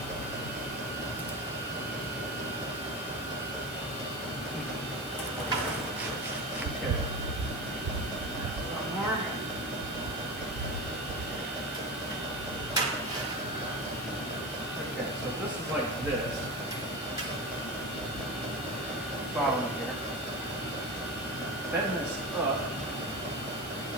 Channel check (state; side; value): noise; left; hiss, 11 dB below the sound